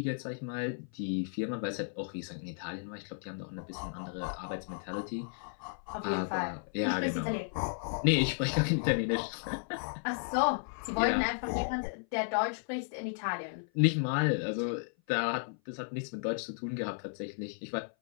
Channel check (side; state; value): right; silent; 55 dB below the other